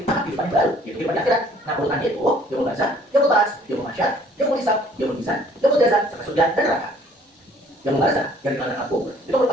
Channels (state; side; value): normal; both; correlation 0.57